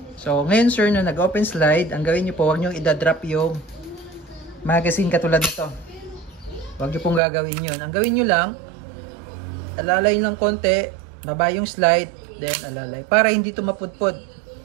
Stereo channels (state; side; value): drops out; left; at 7.2 s